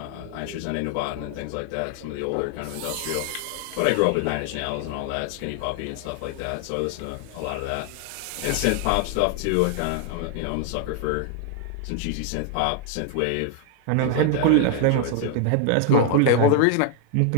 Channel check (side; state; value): both; different; correlation 0.00